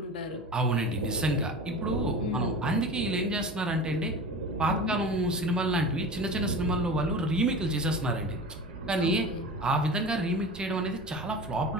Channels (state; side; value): normal; both; correlation 0.33